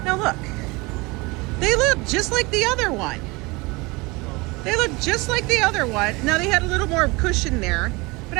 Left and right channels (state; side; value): quieter; left; 24.8 dB